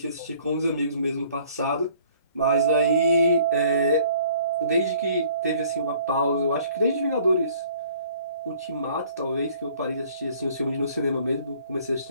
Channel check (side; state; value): both; inverted; correlation -0.56